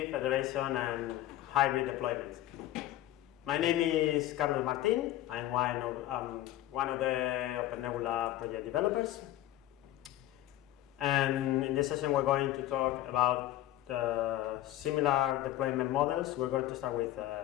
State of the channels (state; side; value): quieter; right; 14.2 dB